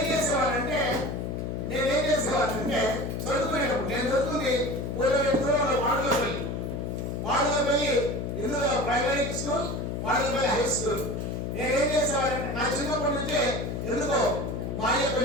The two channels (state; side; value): noise; left; hum, 3 dB below the sound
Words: చేసేవాళ్ళంటే చదువుకునేటప్పుడు, నేను చదువుతుంది వాడుకోపల్లి, ఇందులో ప్రైమరీ స్కూల్, వాడుకోపల్లి హై స్కూల్. నేనేం చేసేవాళ్ళంటే నా చిన్నప్పటి నుంచే ఎందుకో మా అయ్య